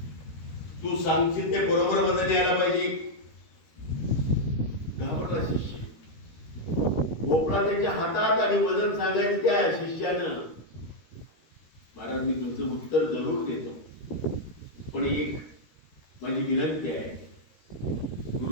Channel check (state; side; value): late; right; 13 ms